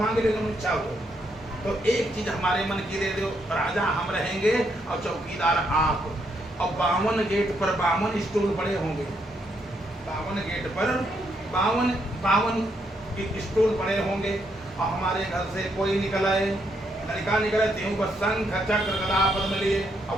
ले, तुम इच्छा हो तो एक चीज हमारे मन की दे दो, राजा हम रहेंगे और चौकीदार आप। और 52 गेट पर 52 स्टूल पड़े होंगे, 52 गेट पर 52 स्टूल पड़े होंगे, और हमारे घर से कोई निकल आए, लड़का निकले त्यों बस शंख चक्र गदा पद्म लिए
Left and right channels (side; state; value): both; normal; correlation 0.76